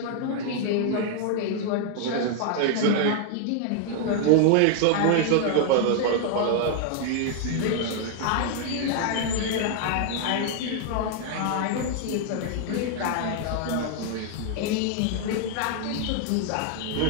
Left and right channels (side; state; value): both; different; correlation 0.00